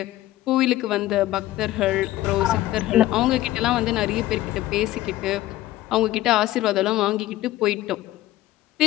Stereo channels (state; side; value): quieter; right; 15.5 dB